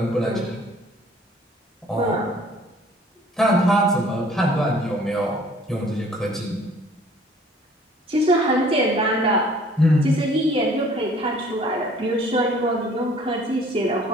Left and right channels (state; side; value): normal; both; correlation 0.54